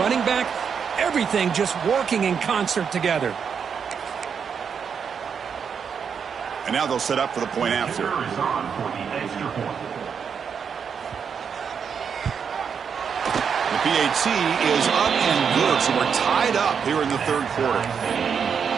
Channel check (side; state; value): left; quieter; 6.8 dB